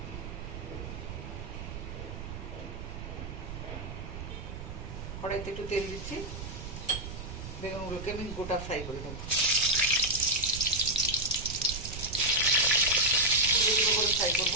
কড়াইতে একটু তেল দিচ্ছি, বেগুনগুলোকে আমি গোটা ফ্রাই করে দেবো। করে ফ্রাই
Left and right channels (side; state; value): right; noise; rumble, 9 dB below the sound